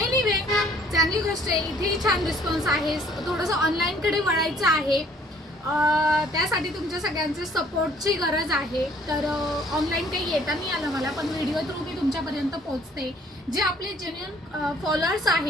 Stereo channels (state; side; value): normal; both; correlation 0.59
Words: चांगली गोष्ट आहे. इथेही छान रिस्पॉन्स आहे. थोडंसं ऑनलाईनकडे वळायचं आहे. त्यासाठी तुमच्या सगळ्यांचे सपोर्टची गरज आहे. तर ऑनलाईन काही येता नाही आलं मला, पण व्हिडिओ थ्रू मी तुमच्यापर्यंत पोहोचते. जे आपले जेन्युइन फॉलोअर्स